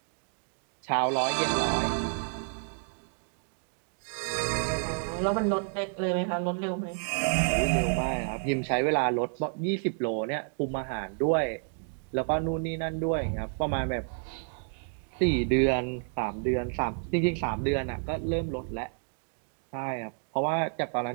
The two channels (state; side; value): silent; left; 58 dB below the other